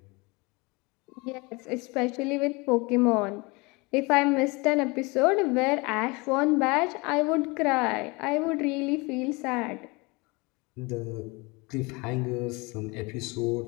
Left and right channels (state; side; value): quieter; right; 26.3 dB